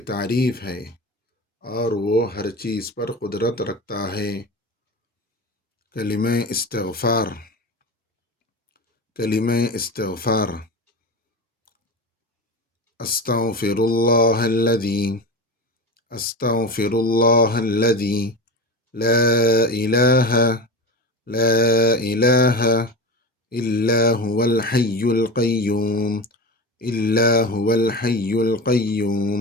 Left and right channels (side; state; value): both; normal; correlation 0.27